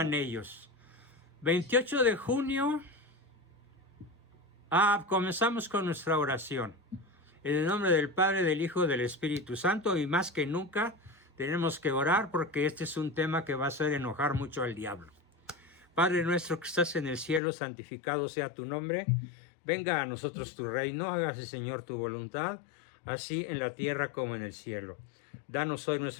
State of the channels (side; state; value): right; drops out; at 17.4 s